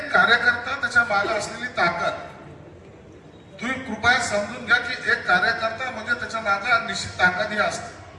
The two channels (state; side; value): identical; both; correlation 1.00